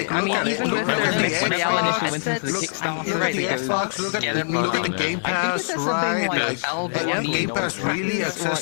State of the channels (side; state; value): right; silent; digital silence